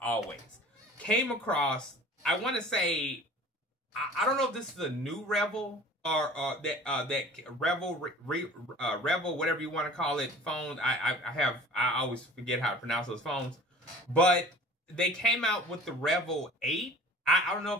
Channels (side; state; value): both; normal; correlation 0.45